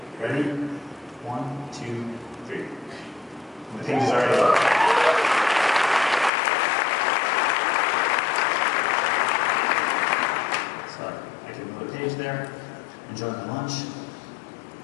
Ready? 1, 2, 3. And the page is already loaded. So I can move a page there, enjoy my lunch.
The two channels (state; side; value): drops out; right; at 6.3 s